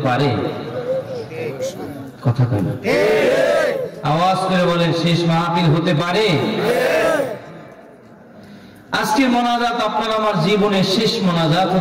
পারে। কথা কয় না? আওয়াজ করে বলেন, শেষ মাহফিল হতে পারে। আজকের মোনাজাত আপনার আমার জীবনের শেষ মোনাজাত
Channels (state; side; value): identical; both; correlation 1.00